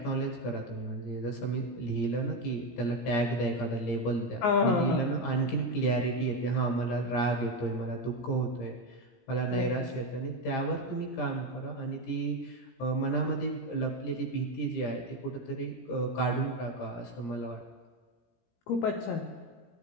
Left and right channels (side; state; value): right; late; 17 ms